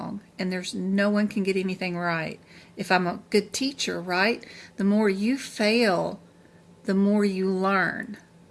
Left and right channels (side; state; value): both; identical; correlation 1.00